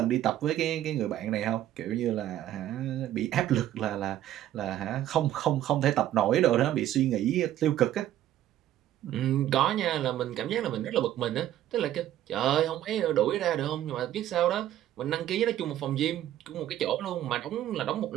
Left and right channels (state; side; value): quieter; left; 12.5 dB